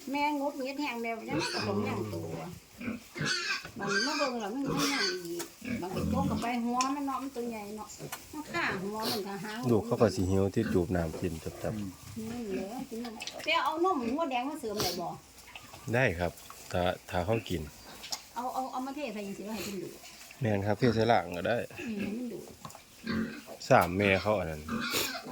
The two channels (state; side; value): identical; both; correlation 1.00